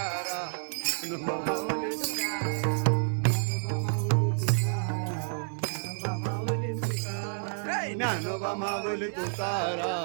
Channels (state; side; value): silent; left; digital silence